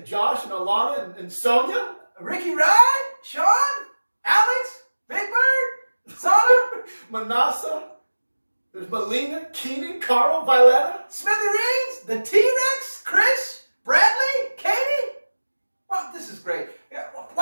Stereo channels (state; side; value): inverted; both; correlation -1.00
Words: Josh and Alana and Sonia. Ricky Ride, Sean, Alex, Big Bird, Sana, Manasa. There's Melina, Keenan, Carl, Violetta. Smithereens, the T-Rex, Chris, Bradley, Katie. Well, this is great.